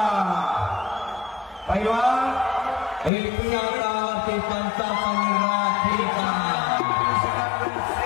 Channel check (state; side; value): drops out; right; at 3.1 s